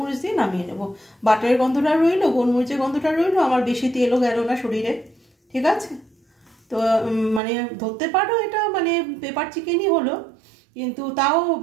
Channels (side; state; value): left; drops out; at 7.4 s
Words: দিয়ে নামিয়ে নেবো। বাটারের গন্ধটা রইলো, গোলমরিচের গন্ধটা রইলো, আমার বেশি তেলও গেল না শরীরে, ঠিক আছে? তো মানে ধরতে পারো এটা মানে পেপার চিকেনই হলো, কিন্তু তাও